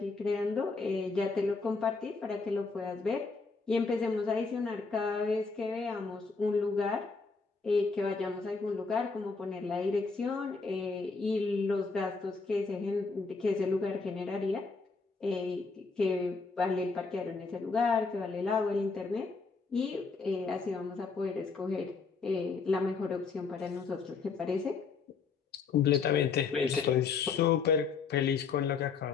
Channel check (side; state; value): right; quieter; 4.7 dB